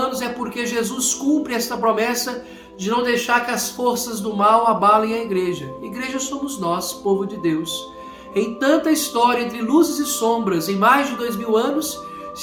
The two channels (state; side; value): identical; both; correlation 1.00